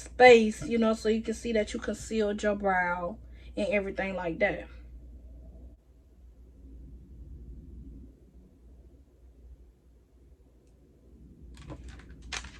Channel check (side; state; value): both; identical; correlation 1.00